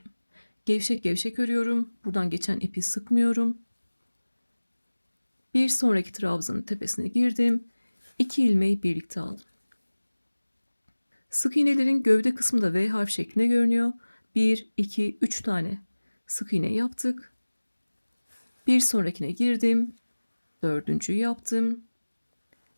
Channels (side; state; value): both; inverted; correlation -1.00